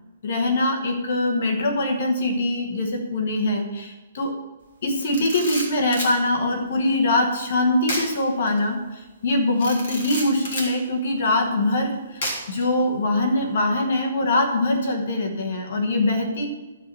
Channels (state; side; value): inverted; both; correlation -0.65